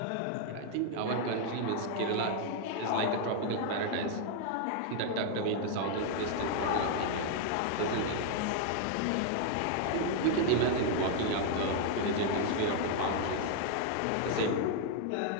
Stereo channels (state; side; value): different; both; correlation 0.00